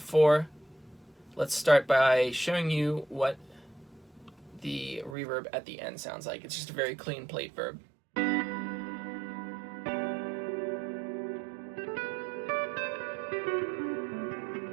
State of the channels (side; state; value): left; drops out; at 5.2 s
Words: Let's start by showing you what the reverb at the end sounds like. It's just a very clean plate verb.